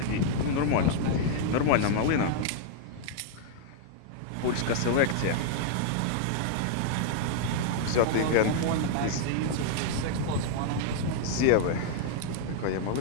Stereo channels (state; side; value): different; both; correlation 0.00